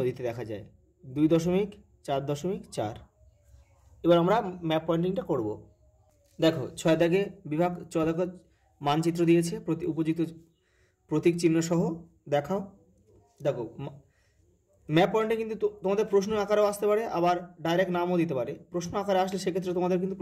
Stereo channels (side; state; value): both; identical; correlation 1.00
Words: দেখা যায়, 2.4.4। এবার আমরা ম্যাপ পয়েন্টিংটা করব। দেখো 6 দাগে বিভাগ, 6 দাগে মানচিত্র দিয়েছে উপযুক্ত প্রতীক চিহ্ন সহ দেখাও। দেখো ম্যাপ পয়েন্টে কিন্তু তোমাদের প্রশ্ন আকারেও আসতে পারে, আবার ডাইরেক্ট নামও দিতে পারে। প্রশ্ন আকারে আসলে সেক্ষেত্রে তোমাদের কিন্তু